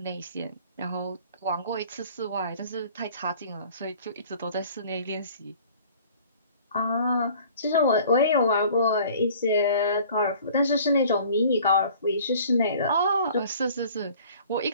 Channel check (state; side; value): inverted; both; correlation -0.50